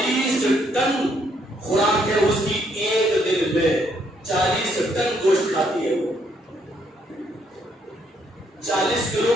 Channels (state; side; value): normal; both; correlation 0.71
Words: ٹن خوراک ہے اس کی، ایک دن میں 40 ٹن گوشت کھاتی ہے وہ۔ 40 کلو